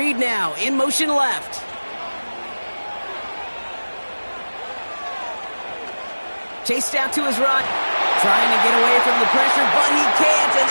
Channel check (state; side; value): inverted; both; correlation -1.00